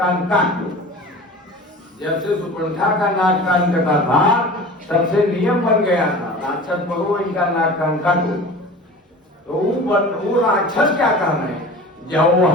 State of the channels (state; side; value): normal; both; correlation 0.38